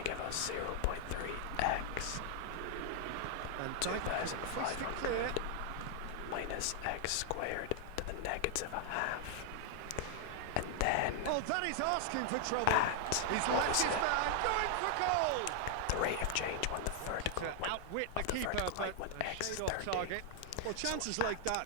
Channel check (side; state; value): both; different; correlation 0.00